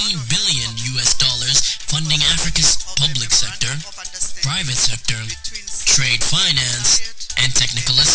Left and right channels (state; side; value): identical; both; correlation 1.00